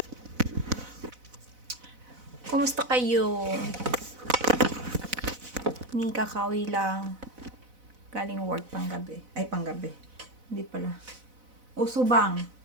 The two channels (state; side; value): late; left; 4.0 ms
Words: Kumusta kayo? Ni kakawi lang. Galing work panggabi. Ay, panggabi. Hindi pala. Usubang.